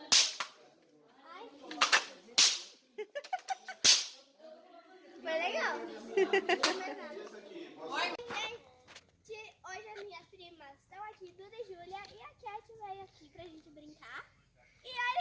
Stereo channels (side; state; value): both; identical; correlation 1.00